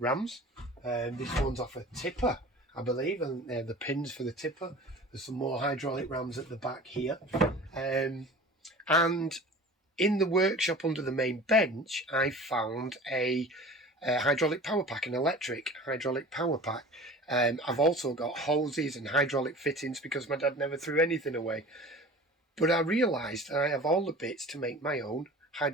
This one's off a tipper, I believe, and they're the pins for the tipper. There's some more hydraulic rams at the back here. And in the workshop under the main bench, I found a hydraulic power pack, an electric hydraulic power pack. I've also got hoses and hydraulic fittings because my dad never threw anything away. But I realised I have all the bits to make my own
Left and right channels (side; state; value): both; normal; correlation 0.40